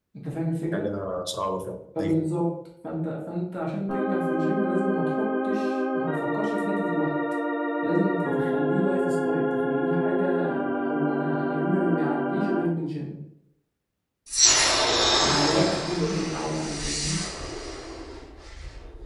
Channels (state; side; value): identical; both; correlation 1.00